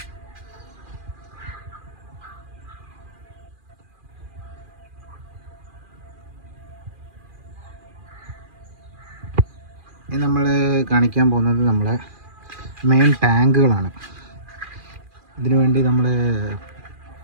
ഇനി നമ്മൾ കാണിക്കാൻ പോകുന്നത് നമ്മളെ മെയിൻ ടാങ്കുകളാണ്. ഇതിനു വേണ്ടി നമ്മൾ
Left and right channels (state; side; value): late; left; 2.4 ms